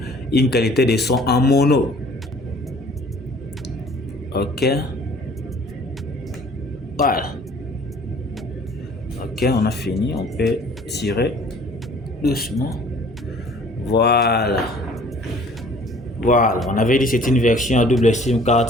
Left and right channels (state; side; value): normal; both; correlation 0.53